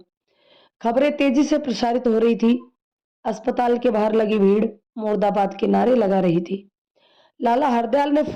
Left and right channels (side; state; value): both; identical; correlation 1.00